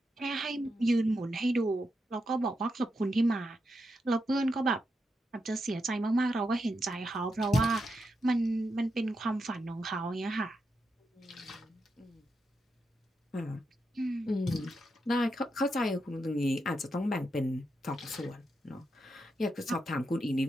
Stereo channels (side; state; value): both; normal; correlation 0.85